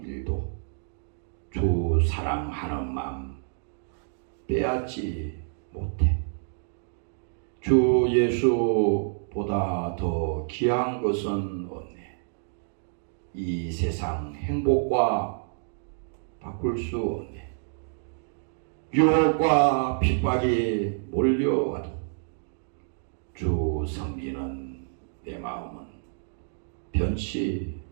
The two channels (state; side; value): silent; left; digital silence